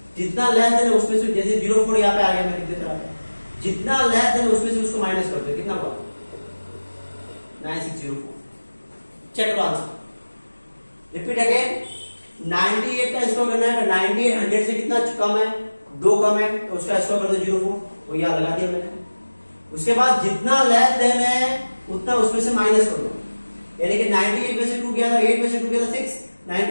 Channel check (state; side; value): inverted; both; correlation -1.00